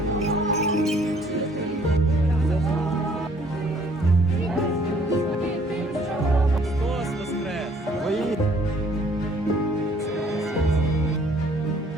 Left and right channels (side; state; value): both; normal; correlation 0.60